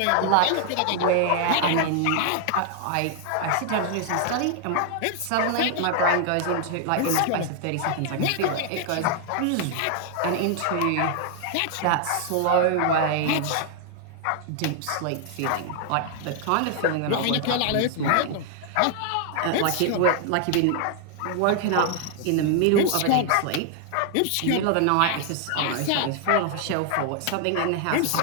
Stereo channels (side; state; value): both; different; correlation 0.00